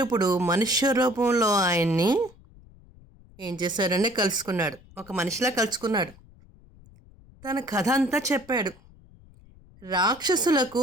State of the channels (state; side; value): noise; left; rumble, 25 dB below the sound